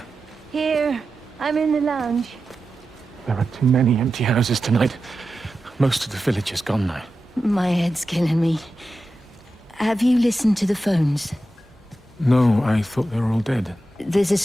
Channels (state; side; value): normal; both; correlation 0.92